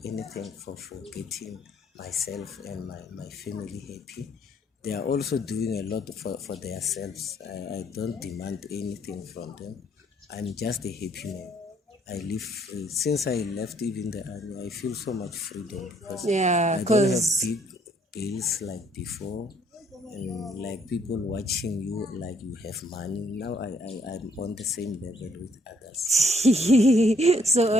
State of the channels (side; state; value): both; normal; correlation 0.67